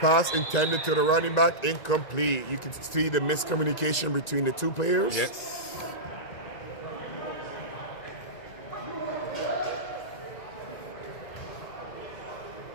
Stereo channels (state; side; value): late; right; 2.0 ms